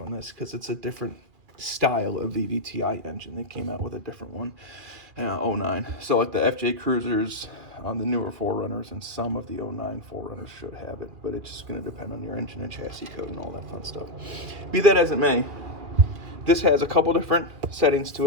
on this, because it's a different style of VVTi engine. They came out with a different one, 09. So like the FJ Cruisers, the newer 4Runners, and some of the 09 4Runners should have it, but it's just going to depend on your engine and chassis code and all that fun stuff. Be that as it may, this has a couple different settings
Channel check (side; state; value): left; late; 2.2 ms